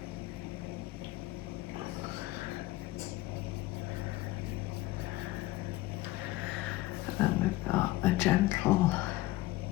And then we've got a gentle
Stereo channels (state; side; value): quieter; right; 17.6 dB